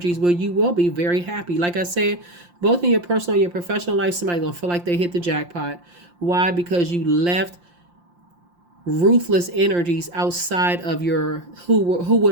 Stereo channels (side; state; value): left; late; 5.7 ms